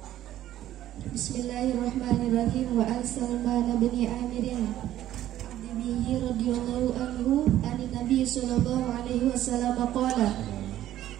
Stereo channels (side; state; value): left; quieter; 12.9 dB